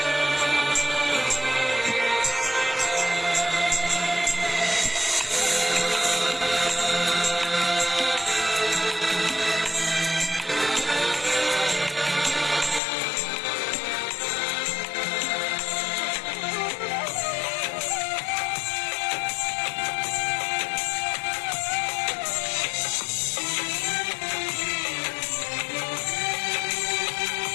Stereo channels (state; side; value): drops out; right; at 12.8 s